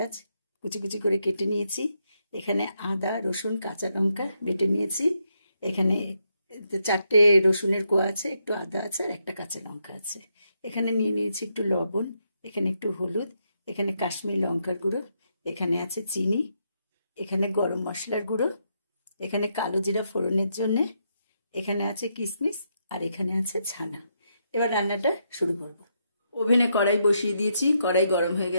কুচি কুচি করে কেটে নিয়েছি, এখানে আদা রসুন কাঁচা লঙ্কা বেটে নিয়েছি, এখানে 4টে রসুনের কোয়া আছে, একটু আদা আছে আর একটা কাঁচা লঙ্কা আছে। এখানে নিয়ে নিয়েছি একটু লবণ, এখানে একটু হলুদ, এখানে কাশ্মীরি লঙ্কার গুঁড়ো, এখানে আছে চিনি, এখানে গরম মশলার গুঁড়ো, এখানে কালো জিরা ফোড়নের জন্য, এখানে আছে কিশমিশ আর এখানে আছে ছানা। এবার রান্নাটা শুরু করব। ওভেনে কড়াই বসিয়ে দিয়েছি, কড়াই গরম হয়ে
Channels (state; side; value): inverted; both; correlation -0.79